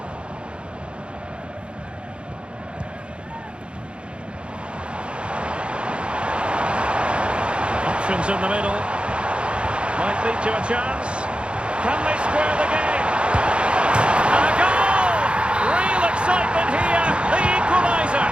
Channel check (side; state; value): left; late; 0.057 ms